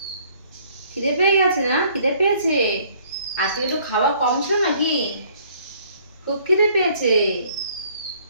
খিদে পেয়ে গেছে না? খিদে পেয়েছে? আজকে একটু খাওয়া কম ছিল নাকি? খুব খিদে পেয়েছে।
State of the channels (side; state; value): both; inverted; correlation -0.60